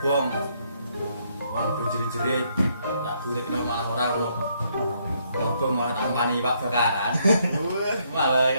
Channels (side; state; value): both; inverted; correlation -0.72